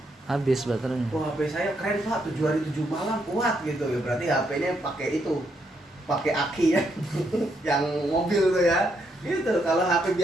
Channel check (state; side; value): normal; both; correlation 0.77